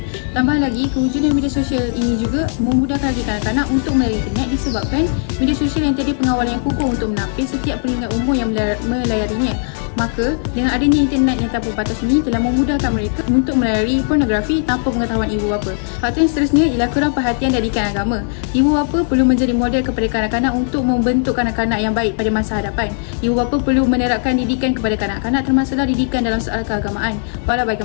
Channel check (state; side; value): silent; right; 59 dB below the other